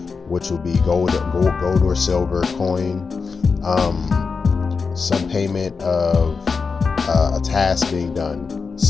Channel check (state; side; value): quieter; right; 5.0 dB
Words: which will be gold or silver coin, some payment of a task being done,